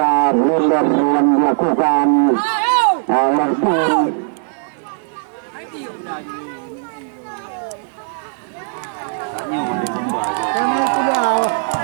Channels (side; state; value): left; silent; digital silence